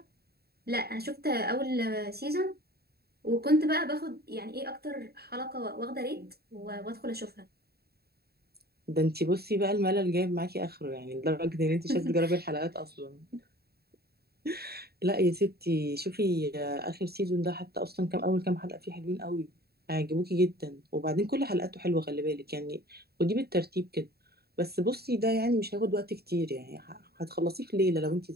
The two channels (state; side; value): late; left; 0.46 ms